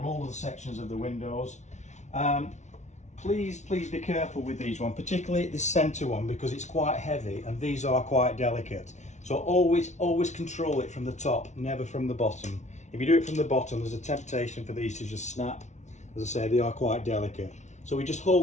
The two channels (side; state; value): right; late; 0.33 ms